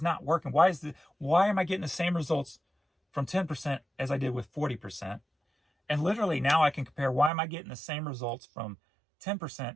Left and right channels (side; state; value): left; drops out; at 7.3 s